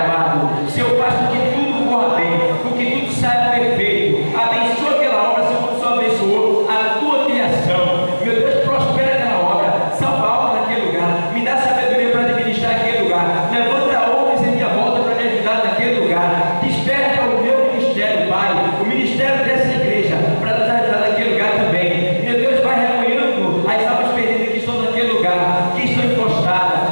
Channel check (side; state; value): both; inverted; correlation -1.00